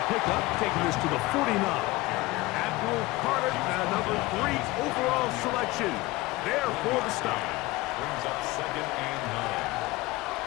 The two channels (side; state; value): right; quieter; 20.2 dB